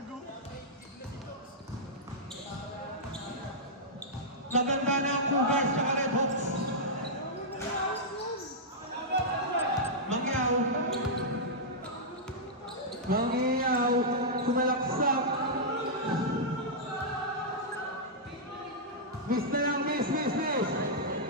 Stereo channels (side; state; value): both; normal; correlation -0.09